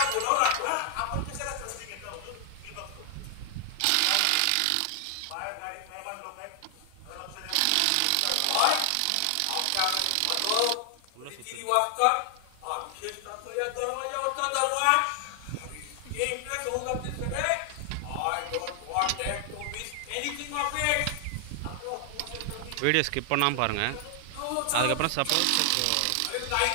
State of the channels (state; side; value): different; both; correlation 0.00